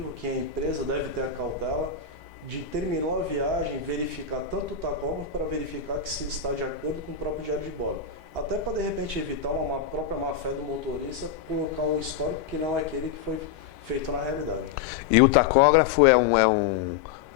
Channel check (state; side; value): quieter; right; 7.2 dB